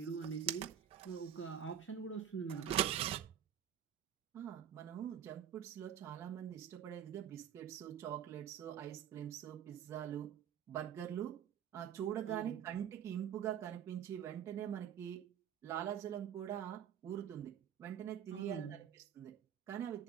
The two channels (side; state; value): left; quieter; 9.6 dB